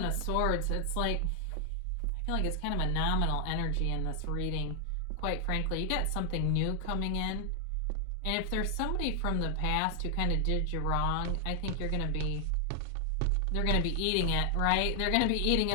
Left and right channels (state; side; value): different; both; correlation 0.00